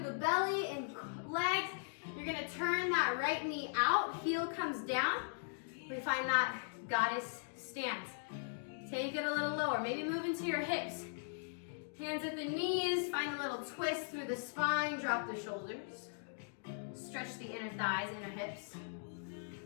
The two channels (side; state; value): right; silent; digital silence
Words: the belly and legs. You're gonna turn that right knee out, heel comes down. We find that goddess stance. Take it a little lower, maybe move into your hips. Hands at the knees, find a little twist through the spine, drop the shoulders. Stretch the inner thighs, inner hips.